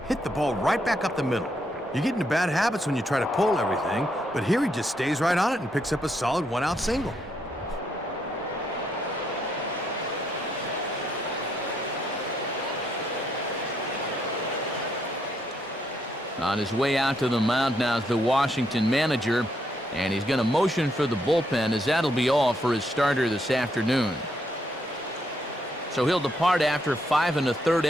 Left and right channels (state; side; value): normal; both; correlation 0.76